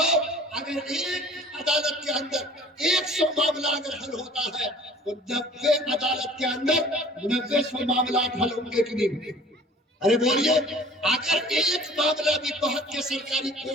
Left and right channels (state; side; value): normal; both; correlation 0.48